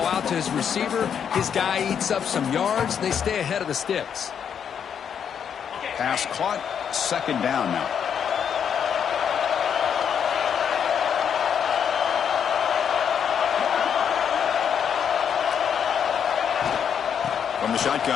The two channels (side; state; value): right; quieter; 7.9 dB